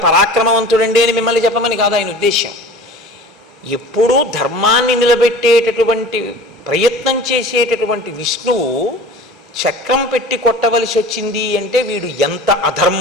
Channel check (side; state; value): both; normal; correlation 0.40